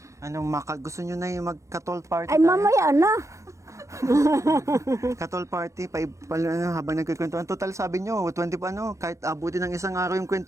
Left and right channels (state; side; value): late; left; 0.15 ms